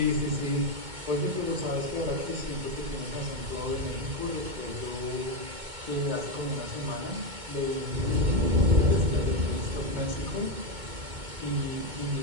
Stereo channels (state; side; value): late; left; 2.2 ms